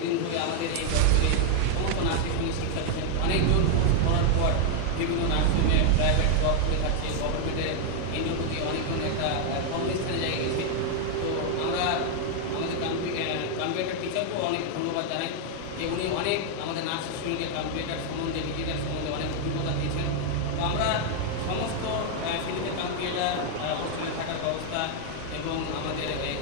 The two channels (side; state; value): both; different; correlation 0.00